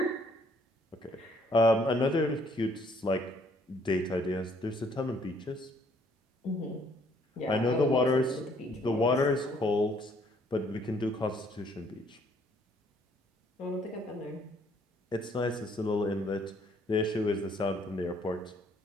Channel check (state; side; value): normal; both; correlation 0.64